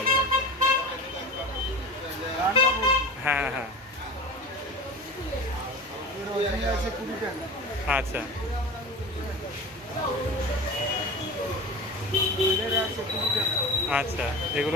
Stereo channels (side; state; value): both; normal; correlation 0.32